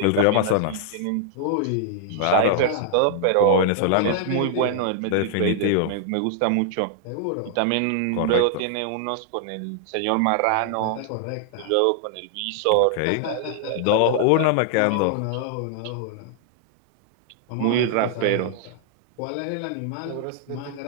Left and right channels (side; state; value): both; different; correlation -0.01